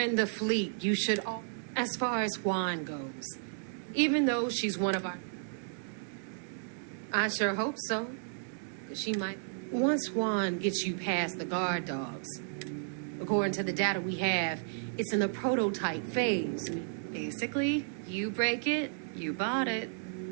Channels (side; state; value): left; silent; digital silence